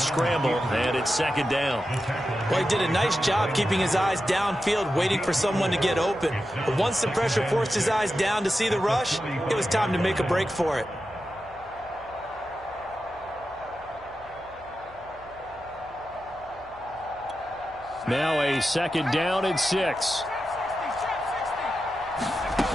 and it's second down. Well, he did a nice job keeping his eyes downfield, waiting for someone to get open. But once the pressure forced his eyes down to see the rush, it was time to make a break for it. Now a second down and 6.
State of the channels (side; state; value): left; noise; hum, 24 dB below the sound